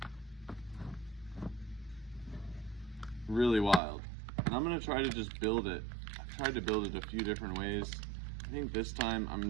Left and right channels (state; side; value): drops out; left; at 3.8 s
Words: Really wild. And I'm going to try to just build it. I've tried to build it a few different ways. I think this time I'm